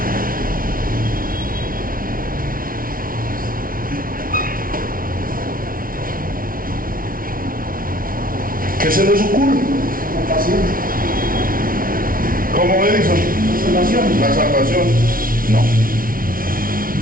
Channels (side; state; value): left; late; 0.42 ms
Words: ¿Qué se les ocurre? La pasión. ¿Cómo Edison? La salvación. La salvación. No.